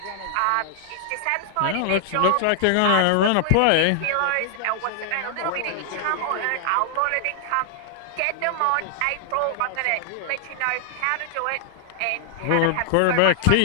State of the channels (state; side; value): different; both; correlation 0.00